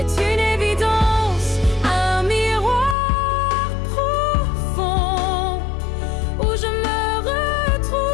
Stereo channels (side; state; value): right; drops out; at 3.0 s